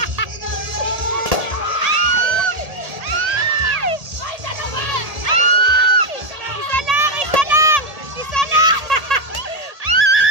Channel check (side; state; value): left; late; 1.8 ms